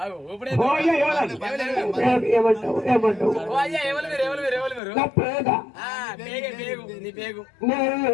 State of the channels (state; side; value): drops out; right; at 4.8 s